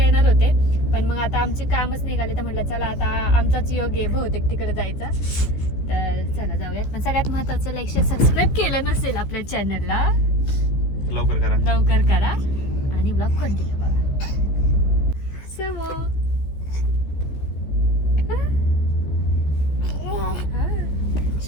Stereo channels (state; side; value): late; right; 14 ms